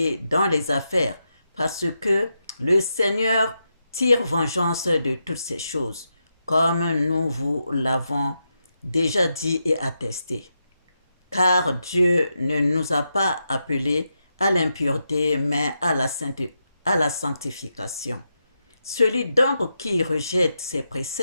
dans les affaires, parce que le Seigneur tire vengeance de toutes ces choses, comme nous vous l'avons déjà dit et attesté. Car Dieu ne nous a pas appelés à l'impureté, mais à la sanctification. Celui donc qui rejette ses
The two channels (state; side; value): inverted; both; correlation -0.85